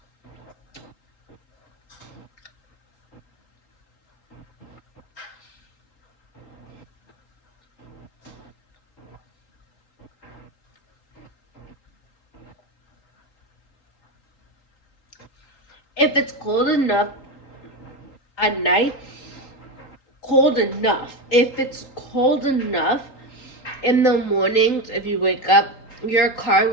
If it's cold enough at night, cold enough. If it's cold enough in the mornings, if you wake up, your car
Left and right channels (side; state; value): right; late; 3.8 ms